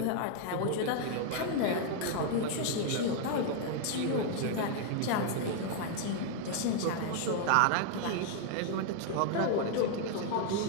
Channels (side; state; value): both; different; correlation 0.00